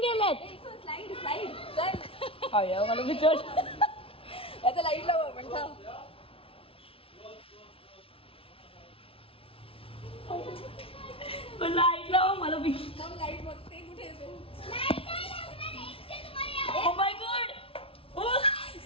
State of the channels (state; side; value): late; right; 0.26 ms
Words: गेलेत? स्लाइड स्लाइड चल. अय्या मला विचार. याचा लाईट लाव आपण थांब. लाईट लावा मला विचार. थांब लाईट